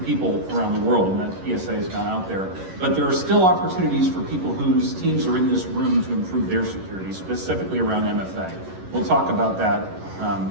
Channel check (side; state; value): left; late; 11 ms